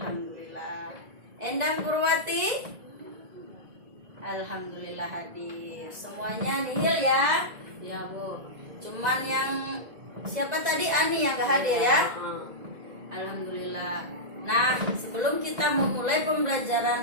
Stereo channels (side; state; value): left; late; 1.9 ms